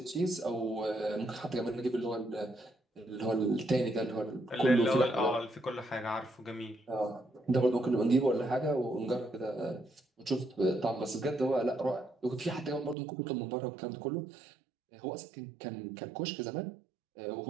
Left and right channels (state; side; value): drops out; left; at 13.0 s